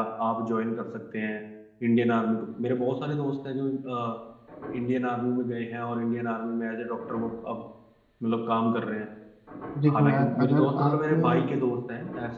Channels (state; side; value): identical; both; correlation 1.00